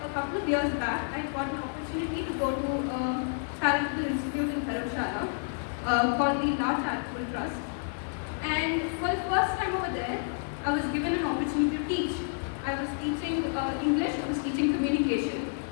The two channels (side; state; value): right; silent; digital silence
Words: couple of years back, I got an opportunity to go to a charitable institute in Dharamshala called the La Charitable Trust. And for the first time over there, I was given an opportunity to teach. I was teaching English, I was teaching communication.